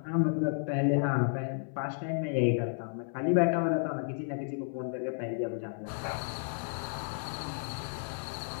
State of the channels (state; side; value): silent; right; 56 dB below the other